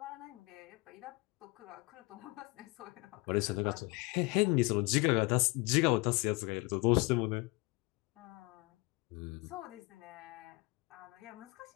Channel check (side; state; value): right; quieter; 25.6 dB